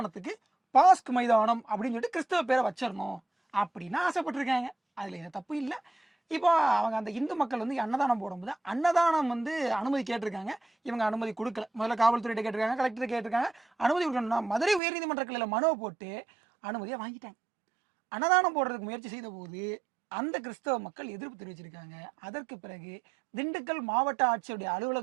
பாஸ்க் மைதானம் அப்படின்னு சொல்லிட்டு கிறிஸ்தவ பேரை வச்சிடணும் அப்படின்னு ஆசைப்பட்டிருக்காங்க. அதுல எந்த தப்பு இல்லை. இப்போ அவங்க அந்த இந்து மக்கள் வந்து அன்னதானம் போடும்போது அன்னதானம் வந்து அனுமதி கேட்டிருக்காங்க. இவங்க அனுமதி கொடுக்கல. முதல்ல காவல்துறையிட்ட கேட்டிருக்காங்க, கலெக்டர் கேட்டிருக்காங்க, அனுமதி கொடுக்கணும்னா மதுரை உயர்நீதிமன்ற கிளையில மனுவை போட்டு அனுமதியை வாங்கிட்டாங்க. அன்னதானம் போடுறதுக்கு முயற்சி செய்த போது அந்த கிறிஸ்தவ மக்கள் எதிர்ப்பு தெரிவிச்சிருக்காங்க. அதற்கு பிறகு திண்டுக்கல் மாவட்ட ஆட்சியருடைய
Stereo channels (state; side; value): drops out; left; at 14.8 s